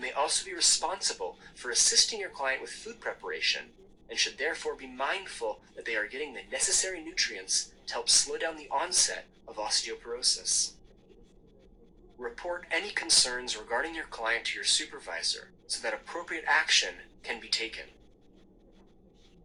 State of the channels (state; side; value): identical; both; correlation 1.00